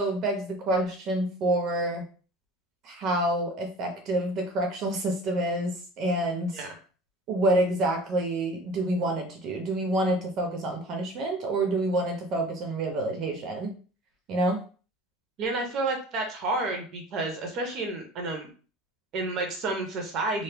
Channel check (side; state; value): both; normal; correlation 0.42